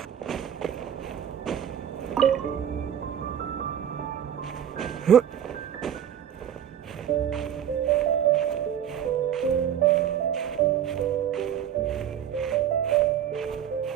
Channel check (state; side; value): quieter; left; 9.7 dB